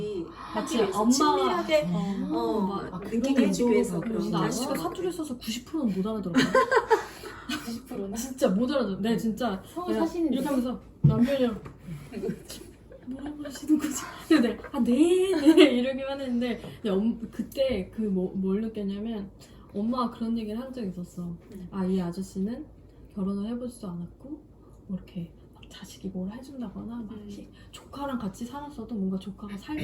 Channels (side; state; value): both; identical; correlation 1.00